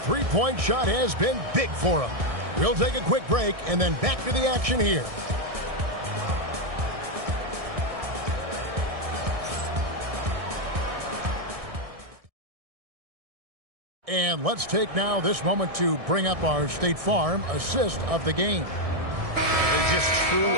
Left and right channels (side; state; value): left; late; 1.6 ms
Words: three-point shot has been big for them. We'll take a quick break and then back to the action here. And let's take now this moment to bring up our State Farm assist of the game. It's just true